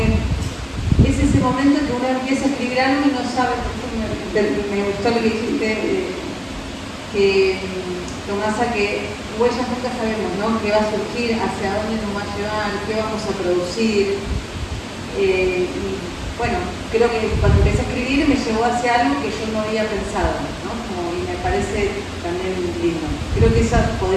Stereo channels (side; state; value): both; identical; correlation 1.00